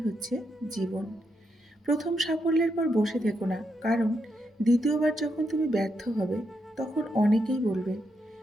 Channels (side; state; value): both; normal; correlation 0.81